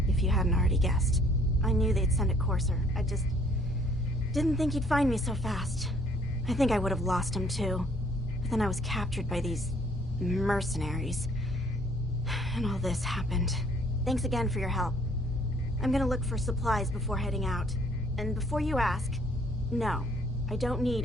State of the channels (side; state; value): both; normal; correlation 0.61